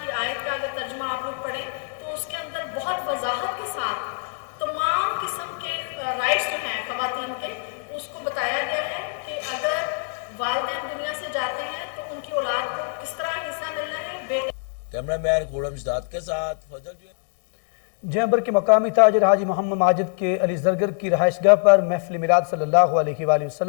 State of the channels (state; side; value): silent; right; 60 dB below the other